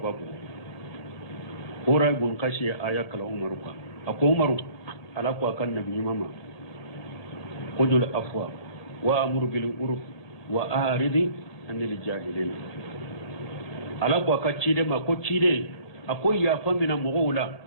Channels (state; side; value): late; right; 1.8 ms